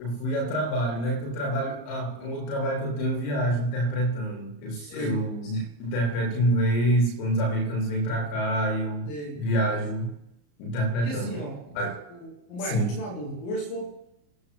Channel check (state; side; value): late; right; 34 ms